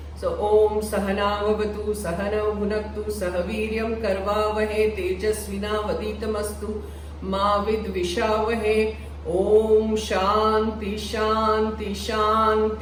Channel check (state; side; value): identical; both; correlation 1.00